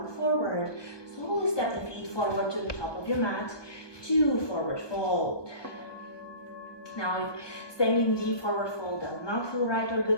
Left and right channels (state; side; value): late; right; 1.2 ms